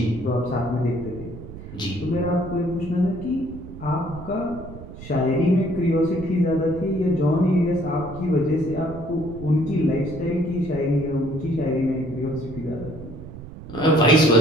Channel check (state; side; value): noise; right; rumble, 13 dB below the sound